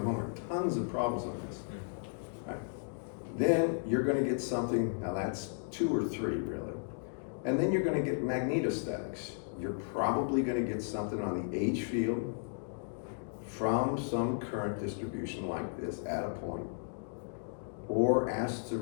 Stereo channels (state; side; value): silent; right; digital silence